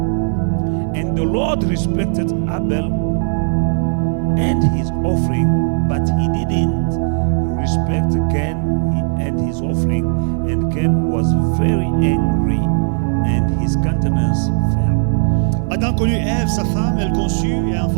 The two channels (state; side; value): silent; left; digital silence